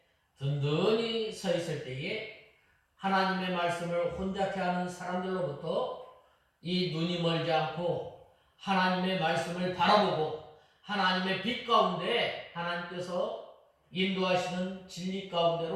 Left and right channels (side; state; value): both; identical; correlation 1.00